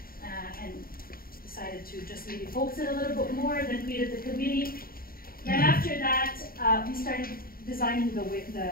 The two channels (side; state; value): right; late; 0.43 ms